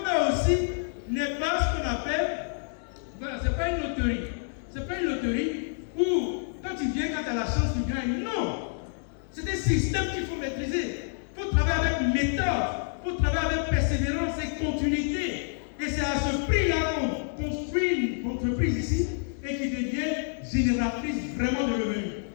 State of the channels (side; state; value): right; silent; 59 dB below the other